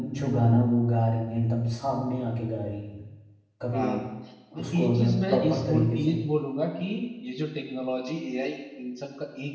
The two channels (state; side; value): identical; both; correlation 1.00